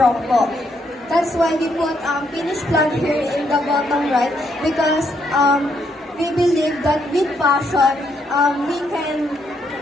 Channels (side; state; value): both; normal; correlation 0.74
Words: po. That's why we put finish plug here in the bottom right because we believe that with passion, we can